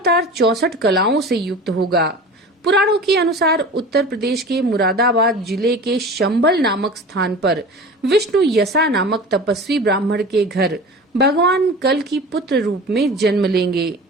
64 कलाओं से युक्त होगा। पुराणों के अनुसार उत्तर प्रदेश के मुरादाबाद जिले के शंबल नामक स्थान पर विष्णु यसा नामक तपस्वी ब्राह्मण के घर भगवान कल की पुत्र रूप में जन्म लेंगे।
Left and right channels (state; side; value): normal; both; correlation 0.36